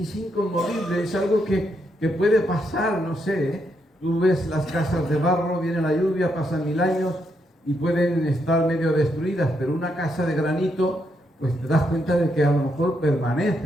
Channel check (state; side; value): normal; both; correlation 0.79